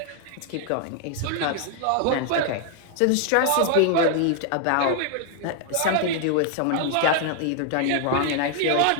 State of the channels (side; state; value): both; different; correlation 0.00